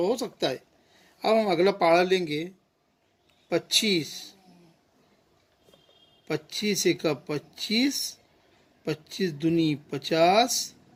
सकता है। अब हम अगला पहाड़ा लेंगे 25। 25 एक 25, 25 दूनी 50,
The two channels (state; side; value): identical; both; correlation 1.00